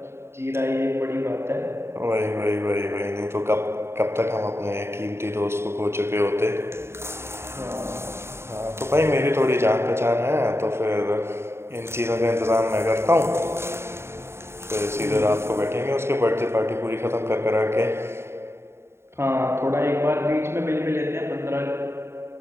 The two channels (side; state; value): left; late; 0.12 ms